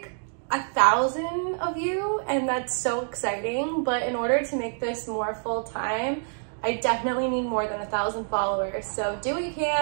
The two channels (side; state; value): left; silent; digital silence